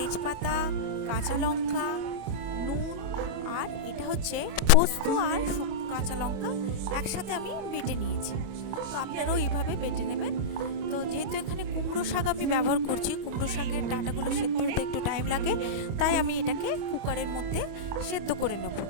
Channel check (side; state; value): left; late; 25 ms